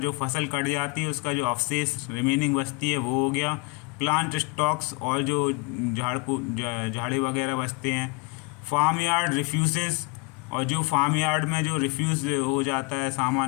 फसल कट जाती है उसका जो अवशेष रिमेनिंग बचती है वो हो गया, प्लांट स्टॉक्स और जो झाड़ी वगैरह बचते हैं, फार्म यार्ड रिफ्यूजेस और जो फार्म यार्ड में जो रिफ्यूज़ हो जाता है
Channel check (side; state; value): right; quieter; 28.0 dB